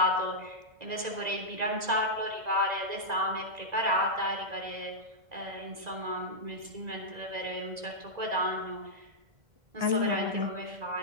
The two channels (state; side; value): late; left; 1.9 ms